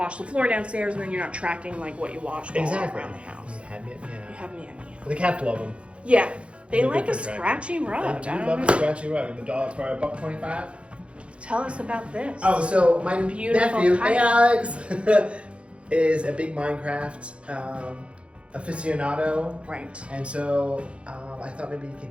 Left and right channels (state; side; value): late; left; 0.060 ms